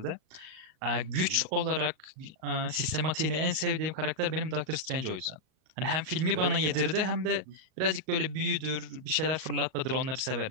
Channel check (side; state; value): left; late; 38 ms